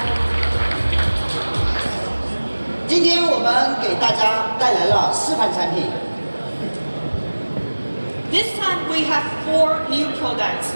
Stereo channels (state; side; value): inverted; both; correlation -1.00